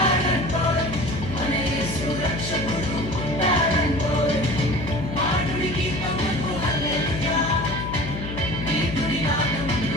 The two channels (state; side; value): noise; left; hum, 7 dB below the sound